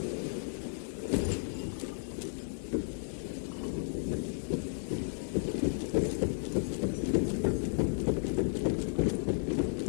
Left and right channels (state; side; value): silent; right; digital silence